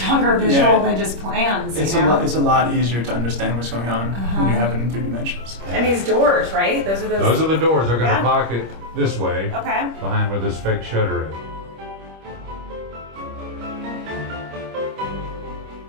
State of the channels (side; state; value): left; late; 25 ms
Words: visual than just plans. It's a lot easier to understand what's going on when you have it in 3 dimensions. And these doors, right? Those are Those are the doors. They're going to pocket this way, Okay. behind where this fake shutter is.